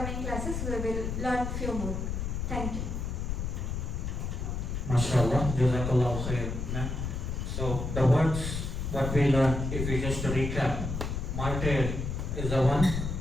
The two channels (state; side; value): noise; left; rumble, 3 dB below the sound